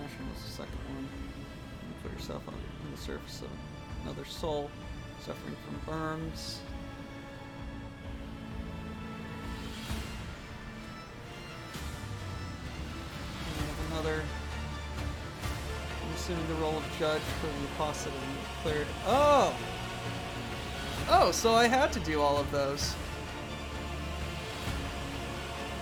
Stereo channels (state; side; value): identical; both; correlation 1.00